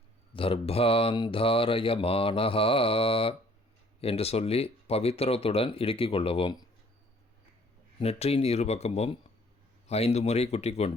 தர்பாந்தாரயமானஹா என்று சொல்லி பவித்திரத்துடன் இடுக்கிக் கொள்ளவும். நெற்றியின் இருபக்கமும் 5 முறை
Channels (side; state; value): both; normal; correlation 0.58